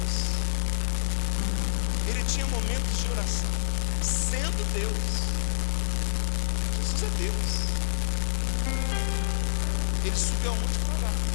Ele tinha momentos de oração. Sendo Deus. Jesus é Deus. Ele subiu ao monte para orar.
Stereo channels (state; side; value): silent; right; digital silence